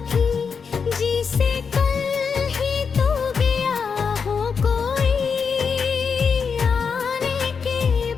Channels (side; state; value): right; quieter; 5.9 dB